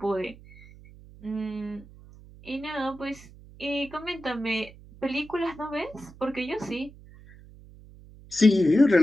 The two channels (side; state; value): right; noise; hum, 21 dB below the sound